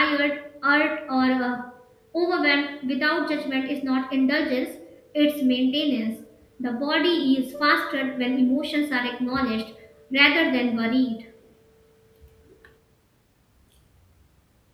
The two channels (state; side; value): identical; both; correlation 1.00